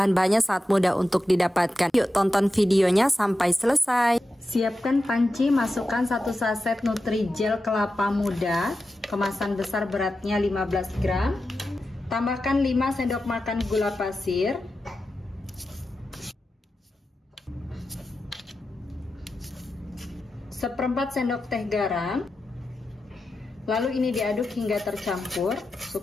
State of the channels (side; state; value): both; normal; correlation 0.91